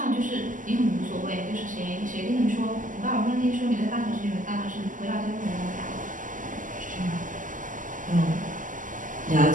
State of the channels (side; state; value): left; late; 0.38 ms